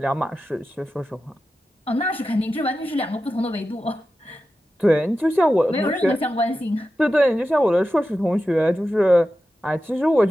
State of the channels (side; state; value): both; normal; correlation 0.92